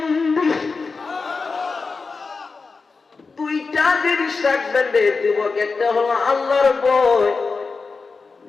দুইটা জিনিস রাখবেন রে যুবক, একটা হলো আল্লাহর ভয়,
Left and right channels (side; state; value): right; quieter; 4.4 dB